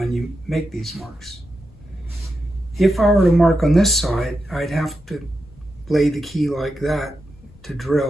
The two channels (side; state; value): left; noise; rumble, 24 dB below the sound